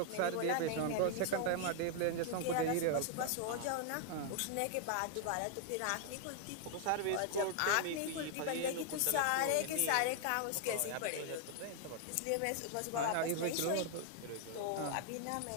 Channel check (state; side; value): different; both; correlation 0.00